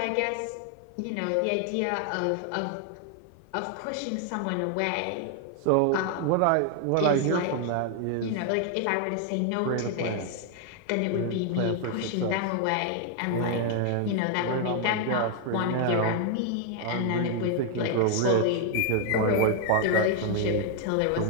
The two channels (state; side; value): different; both; correlation 0.00